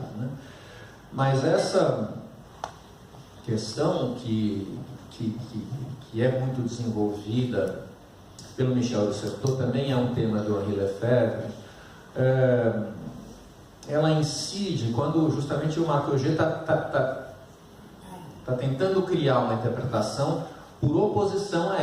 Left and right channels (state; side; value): identical; both; correlation 1.00